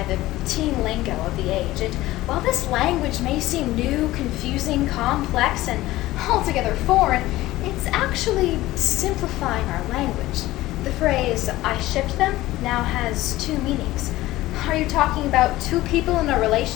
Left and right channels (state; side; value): quieter; right; 17.0 dB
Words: the teen lingo of the age, and while this language may seem new, confusing, complex, and altogether foreign, it's actually simplifying our language. The phrase, I shipped them, now has two meanings. Are you talking about two people in a